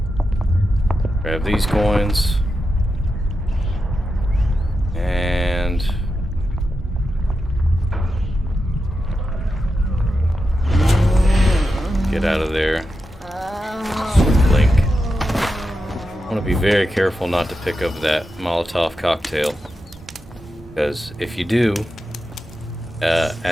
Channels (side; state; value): both; normal; correlation 0.89